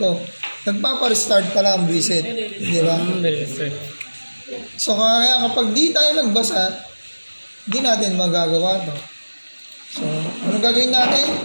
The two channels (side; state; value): both; inverted; correlation -1.00